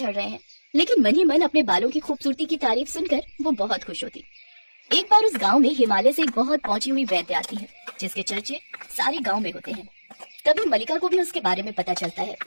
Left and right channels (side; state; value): both; inverted; correlation -1.00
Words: रहे हैं। लेकिन मन ही मन अपने बालों की खूबसूरती की तारीफ सुनकर वो बहुत खुश होती। एक बार उस गांव में हिमालय से एक बहुत पहुंची हुई वैद्य आती है, जिसके चर्चे सारे गांव में होते हैं। तभी मलिका को भी उसके बारे में पता चलता है।